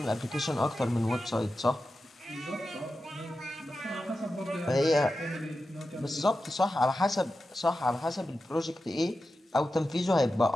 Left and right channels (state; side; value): normal; both; correlation 0.91